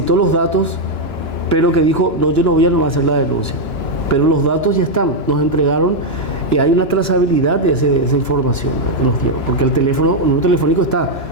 los datos, pero que dijo, no, yo no voy a hacer la denuncia. Pero los datos ya están, nos entregaron y hay una trazabilidad de esa información que nos dieron, porque el número telefónico está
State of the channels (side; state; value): right; late; 2.9 ms